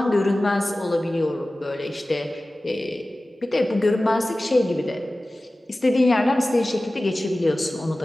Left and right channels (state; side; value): normal; both; correlation 0.96